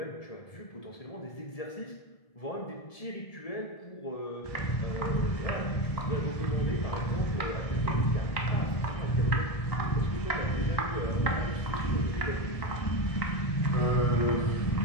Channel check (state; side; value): late; right; 1.7 ms